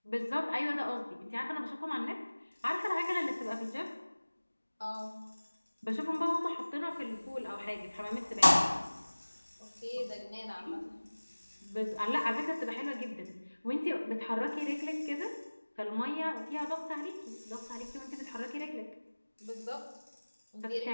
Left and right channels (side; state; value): both; inverted; correlation -1.00